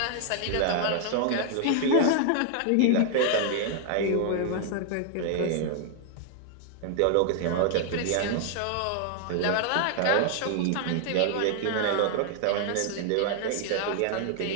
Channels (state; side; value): different; both; correlation 0.00